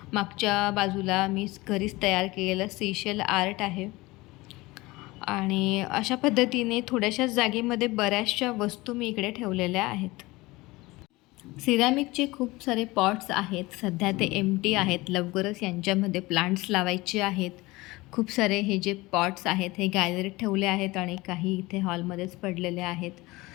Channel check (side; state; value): right; quieter; 21.1 dB